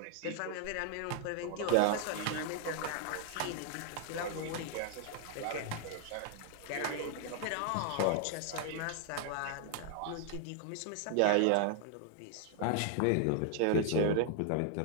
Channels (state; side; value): different; both; correlation 0.00